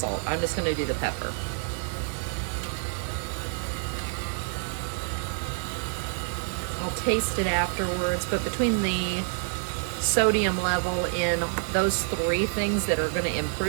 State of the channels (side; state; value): left; silent; digital silence